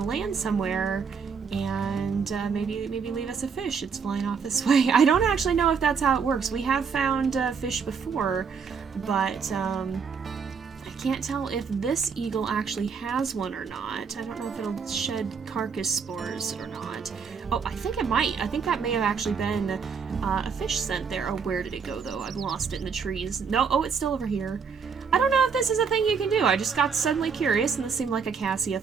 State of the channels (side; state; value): left; quieter; 6.0 dB